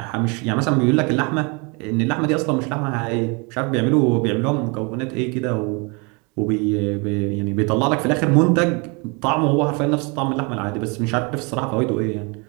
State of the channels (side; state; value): left; quieter; 30.5 dB